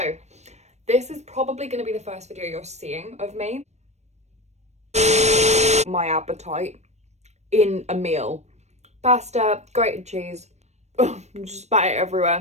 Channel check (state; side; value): late; left; 0.32 ms